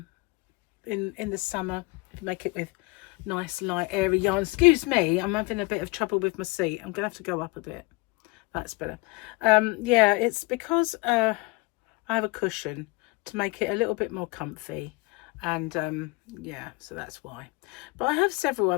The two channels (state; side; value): quieter; right; 24.9 dB